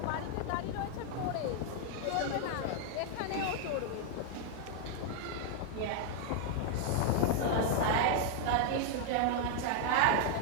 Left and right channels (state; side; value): different; both; correlation 0.00